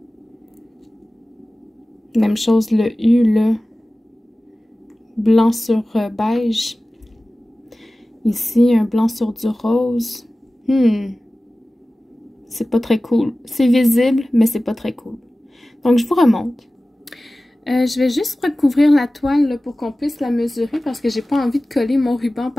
Même chose le U là. Blanc sur beige. Ici, un blanc sur du rose. C'est pas très cool. C'est visible, mais c'est pas très cool. Donc, je vous remonte. Je vais juste recouvrir la toile là, pour qu'on puisse la mesurer parce que j'ai pas envie de coller mon ruban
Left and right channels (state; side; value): normal; both; correlation 0.96